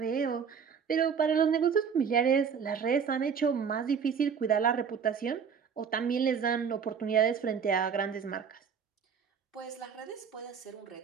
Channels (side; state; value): left; quieter; 6.7 dB